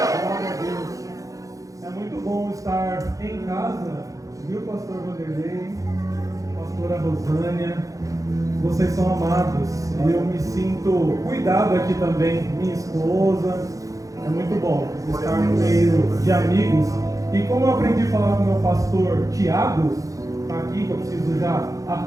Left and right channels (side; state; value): left; late; 0.16 ms